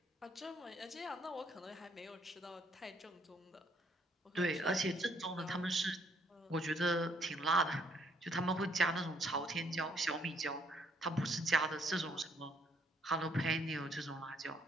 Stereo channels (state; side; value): normal; both; correlation 0.67